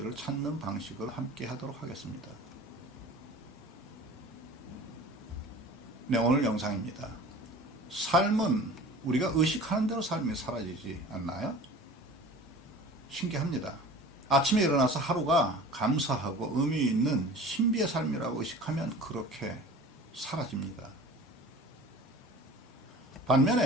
찾는 방식을 함께 하도록 하겠습니다. 네, 오늘 영상입니다. 삶은 우리가 의식하는 대로 삶이 사라지지 않나요? 신기합니다. 아침에 일어나서 하루가 감사하고 의미 있는 신비의 삶이라고 의식하면 그렇게 사라집니다.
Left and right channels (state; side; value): normal; both; correlation 0.41